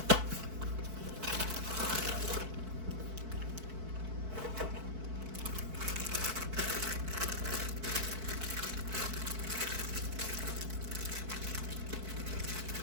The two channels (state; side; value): late; left; 4.6 ms